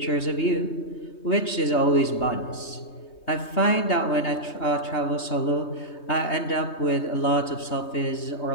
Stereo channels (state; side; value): late; right; 3.2 ms